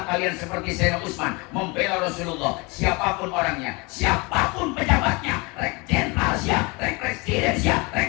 kalian seperti Sayyidina Utsman, membela Rasulullah. Siapapun orangnya, siapapun pejabatnya, rek jenderal siap, rek presiden siap, rek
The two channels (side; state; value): right; quieter; 27.2 dB